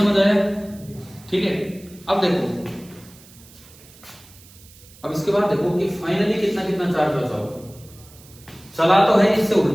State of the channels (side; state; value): right; noise; hiss, 23 dB below the sound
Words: आया? ठीक है, अब देखो, अब इसके बाद देखो कि फाइनली कितना कितना चार्ज बचा होगा। चला तो है इससे